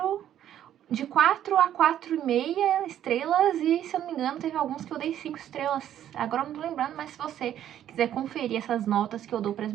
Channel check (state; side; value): quieter; left; 11.0 dB